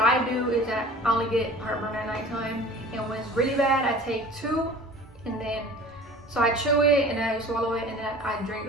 do is that I only get heartburn at nighttime, and when it's really bad, I take 2, and then so I chew it and then I swallow it, and then I drink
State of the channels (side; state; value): both; normal; correlation 0.43